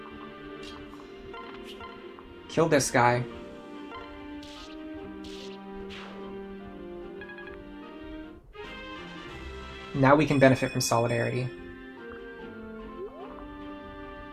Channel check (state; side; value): identical; both; correlation 1.00